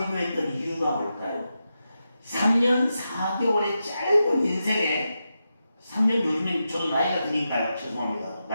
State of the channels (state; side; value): inverted; both; correlation -0.89